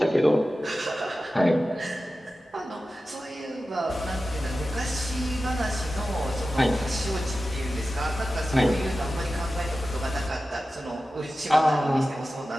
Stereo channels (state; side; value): normal; both; correlation 0.94